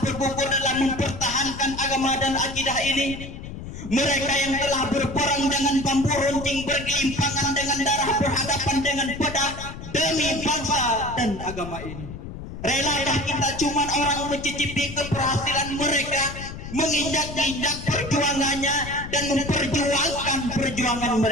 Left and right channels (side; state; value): left; noise; rumble, 10 dB below the sound